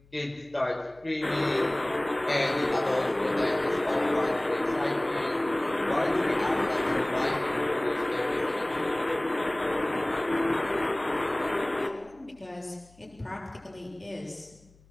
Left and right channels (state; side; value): noise; left; hum, 29 dB below the sound